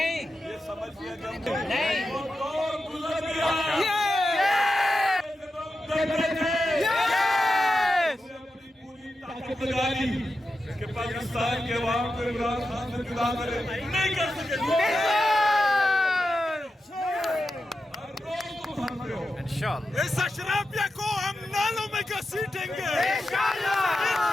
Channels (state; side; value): normal; both; correlation 0.90